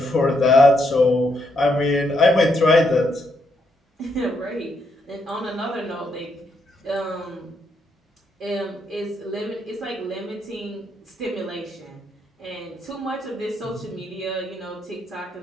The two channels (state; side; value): normal; both; correlation 0.77